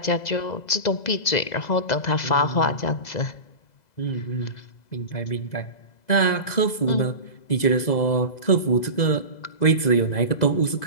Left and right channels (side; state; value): right; late; 2.0 ms